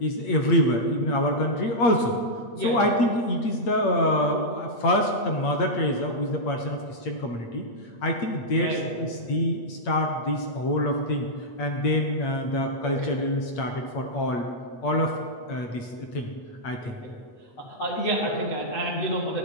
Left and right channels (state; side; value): late; right; 8.6 ms